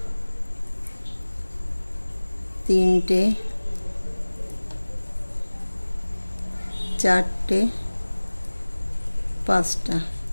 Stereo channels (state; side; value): inverted; both; correlation -1.00